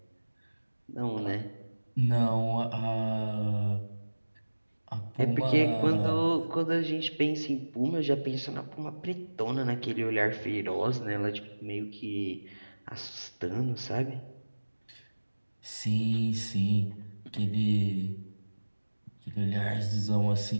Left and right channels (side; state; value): both; inverted; correlation -1.00